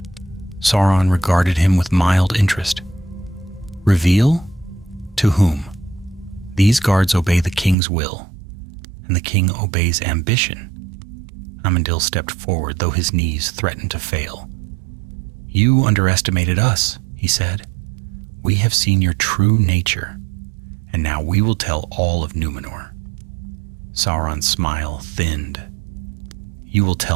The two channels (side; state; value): left; drops out; at 7.8 s